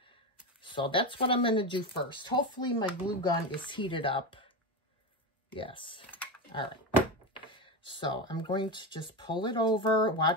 So that's what I'm going to do first. Hopefully my glue gun is heated up. Yes. All right. So I'm going to just pull it over.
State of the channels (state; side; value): normal; both; correlation 0.17